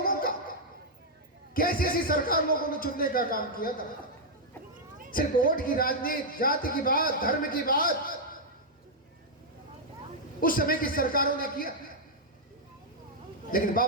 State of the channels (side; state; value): both; normal; correlation -0.04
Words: का। कैसी ऐसी सरकार लोगों ने चुनने का काम किया था, सिर्फ वोट की राजनीति, जाति की बात, धर्म की बात उस समय की सरकारों ने किया। लेकिन